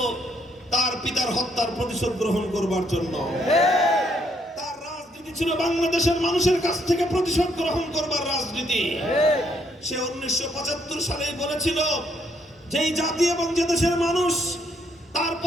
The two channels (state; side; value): normal; both; correlation 0.72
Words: তার পিতার হত্যার প্রতিশোধ গ্রহণ করবার জন্য। তার রাজনীতি ছিল বাংলাদেশের মানুষের কাছ থেকে প্রতিশোধ গ্রহণ করবার রাজনীতি। সে 1975 সালেই বলেছিল, যেই জাতি এবং যে দেশের মানুষ তার